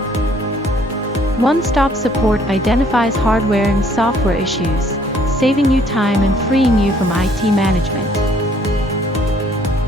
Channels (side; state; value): both; normal; correlation 0.61